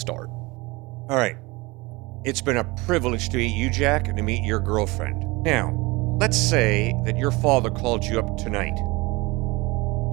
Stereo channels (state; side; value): quieter; left; 23.7 dB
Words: All right. It's been a privilege to meet you, Jack, and to meet your girlfriend. Now, let's say that your father called you up tonight